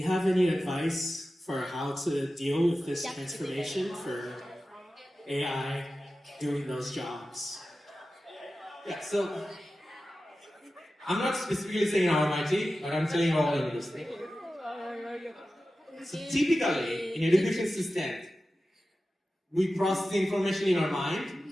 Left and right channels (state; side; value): normal; both; correlation 0.94